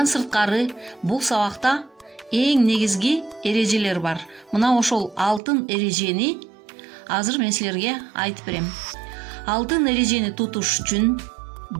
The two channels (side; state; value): left; drops out; at 5.4 s